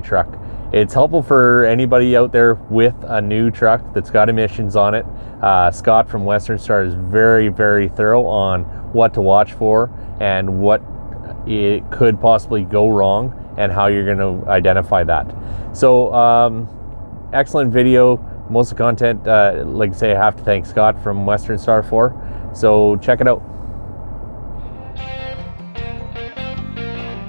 truck. It's helpful for anybody out there with a new truck that's got emissions on it. Scott from westernstar is very, very thorough on what to watch for and what it could possibly go wrong and how you're going to identify that. So, excellent video. Most of the content, like I say, I have to thank Scott from westernstar for. So check it out.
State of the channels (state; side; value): inverted; both; correlation -1.00